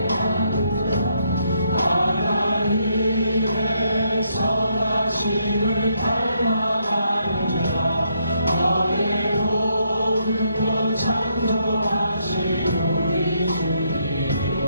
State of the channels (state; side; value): inverted; both; correlation -0.75